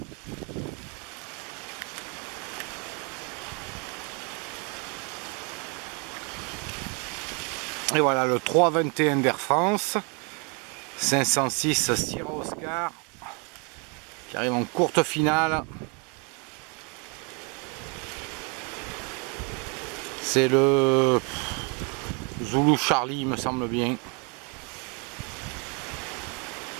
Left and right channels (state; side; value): quieter; left; 34.5 dB